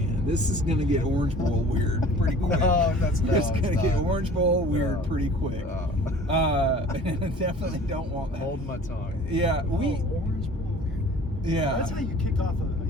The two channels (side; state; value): both; normal; correlation 0.47